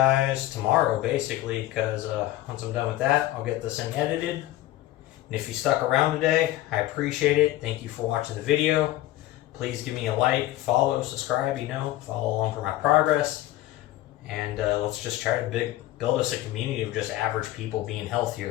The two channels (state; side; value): quieter; right; 15.3 dB